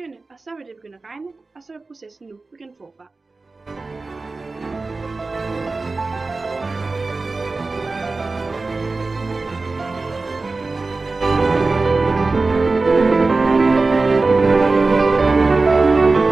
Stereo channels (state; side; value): quieter; left; 3.7 dB